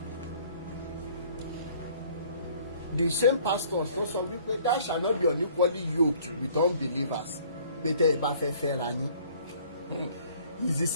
The same pastors tó sọ wípé that shall not be unequally yoked with unbelievers pé tẹ́ ẹ bá fẹ́ fẹ́ra yín. It's the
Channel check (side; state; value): both; inverted; correlation -0.56